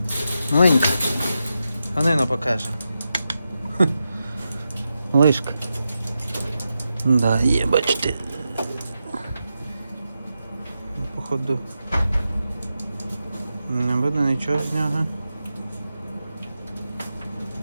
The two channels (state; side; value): inverted; both; correlation -0.89